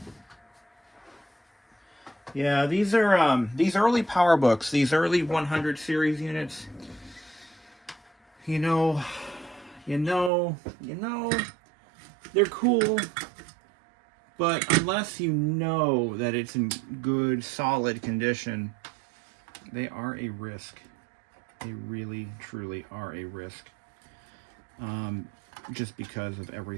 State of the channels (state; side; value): drops out; left; at 10.3 s